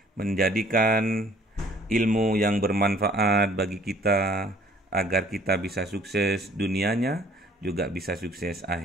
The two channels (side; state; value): both; normal; correlation 0.56